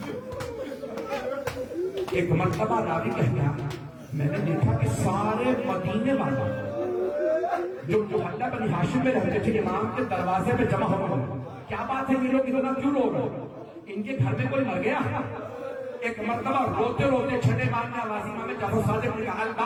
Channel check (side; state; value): both; identical; correlation 1.00